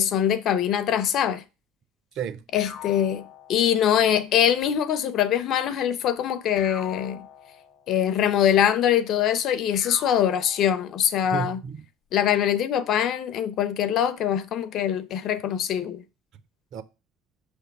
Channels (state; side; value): quieter; right; 9.1 dB